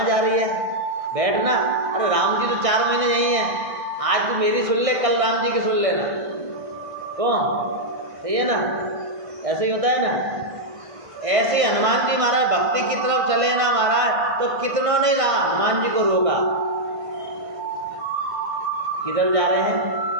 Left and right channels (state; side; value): late; left; 1.6 ms